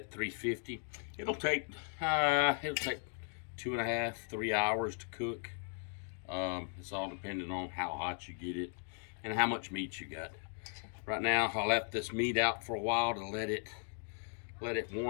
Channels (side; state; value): right; silent; 53 dB below the other